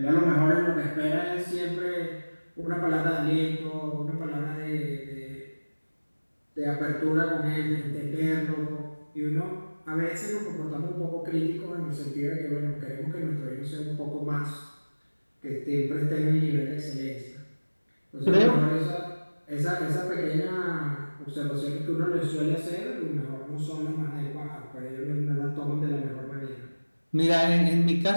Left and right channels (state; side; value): inverted; both; correlation -1.00